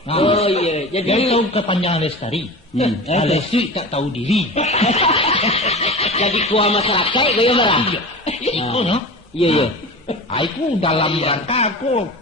iya. Jadi tahu kepanjangan lestari. Lestari tak tahu diri. Jadi kuah masyarakat gaya marah. Itu no. Iya. Aku dalam rangka aku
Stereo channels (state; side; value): normal; both; correlation 0.32